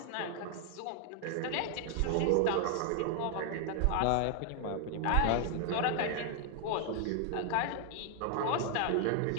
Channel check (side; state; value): both; different; correlation 0.00